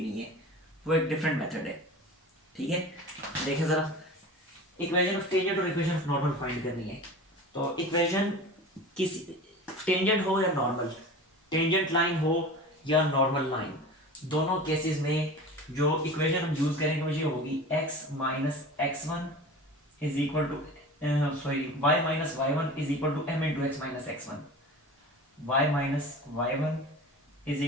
नहीं है, वो एक डिफरेंट मेथड है। ठीक है, देखें ज़रा, इक्वेशन ऑफ टेंजेंट और इक्वेशन ऑफ नॉर्मल फाइंड करनी है। तो इक्वेशन किसी टेंजेंट हो या नॉर्मल, टेंजेंट लाइन हो या नॉर्मल लाइन, दोनों केसेस में जो इक्वेशन हम यूज करेंगे वो ये होगी x minus x one is equal to y minus y one is equal to m into x minus x one, y minus y one is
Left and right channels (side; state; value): both; normal; correlation 0.35